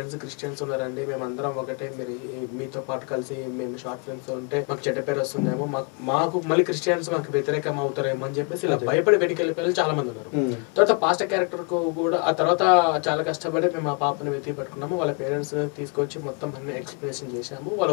క్రిస్టియన్స్ ఉన్నారండి, మేమందరం ఒకటే, మీరు మీతో పాటు కలిసి మేము షార్ట్ ఫిల్మ్స్ ఉంటే మాకు చెడ్డ పేరు వస్తుందేమో, మాకు మళ్ళీ క్రిస్టియన్స్ మాకు వ్యతిరేకం అవుతారేమో అని చెప్పేసి ఇలా భయపడి వెనక్కి వెళ్ళిపోయి చాలా మంది ఉన్నారు. తర్వాత పాస్టర్ క్యారెక్టర్ కు కూడా ఆ తర్వాత చాలా కష్టపడి మేము ఆ పాపని వెతికి పట్టుకున్నాము. వాళ్ళ పేరెంట్స్ తీసుకొచ్చి మొత్తం అన్ని ఎక్స్ప్లెనేషన్ చేశాము,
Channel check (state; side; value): quieter; right; 35.7 dB